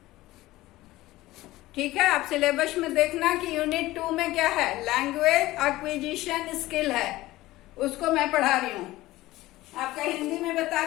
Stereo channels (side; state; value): right; quieter; 17.5 dB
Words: ठीक है, आप सिलेबस में देखना कि यूनिट 2 में क्या है, लैंग्वेज एक्विजिशन स्किल है, उसको मैं पढ़ा रही हूँ। आपका हिंदी में बता